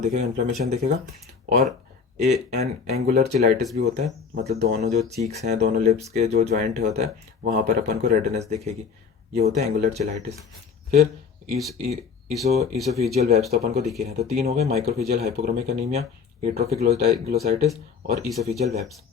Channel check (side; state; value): right; quieter; 5.8 dB